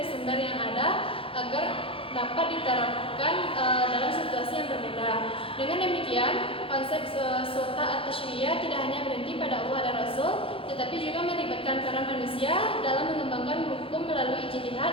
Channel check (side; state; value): right; late; 0.26 ms